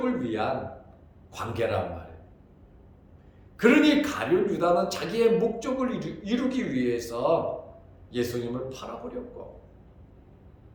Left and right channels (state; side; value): identical; both; correlation 1.00